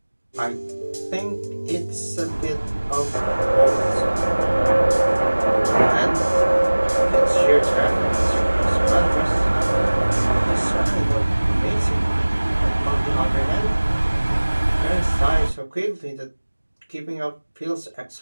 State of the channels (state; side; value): inverted; both; correlation -1.00